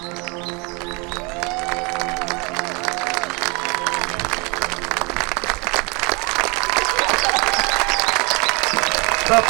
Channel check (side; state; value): left; quieter; 29.6 dB